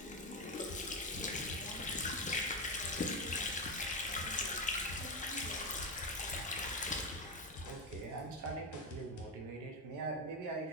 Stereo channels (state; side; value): normal; both; correlation 0.12